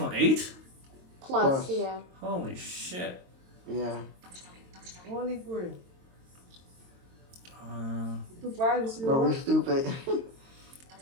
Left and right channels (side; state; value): left; late; 22 ms